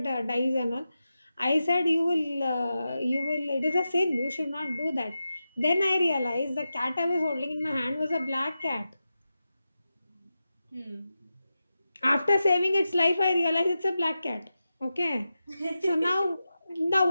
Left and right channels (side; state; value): both; inverted; correlation -0.91